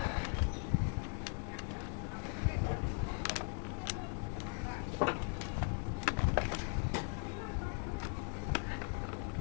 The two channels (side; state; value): right; quieter; 38.8 dB